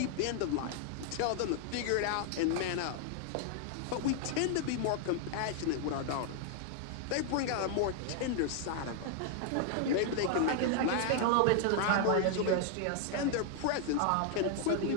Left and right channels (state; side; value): different; both; correlation 0.00